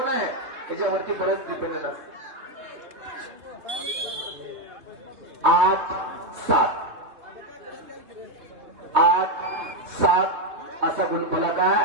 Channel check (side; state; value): left; late; 2.8 ms